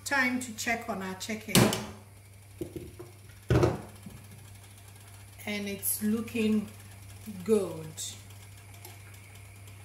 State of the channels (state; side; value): identical; both; correlation 1.00